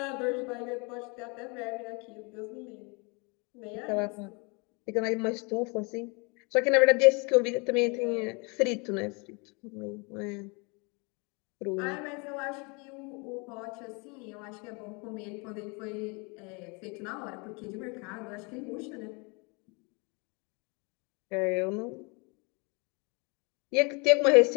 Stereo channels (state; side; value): quieter; right; 30.9 dB